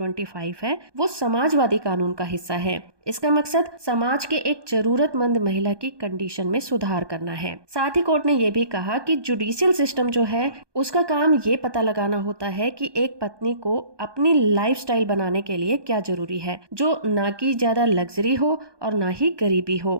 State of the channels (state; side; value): late; left; 1.2 ms